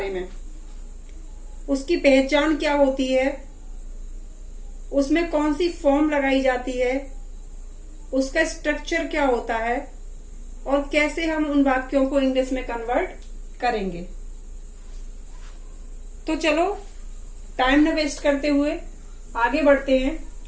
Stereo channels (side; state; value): both; identical; correlation 1.00